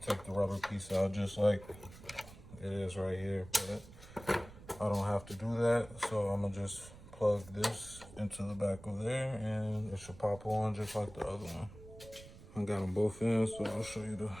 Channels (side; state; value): right; noise; rumble, 18 dB below the sound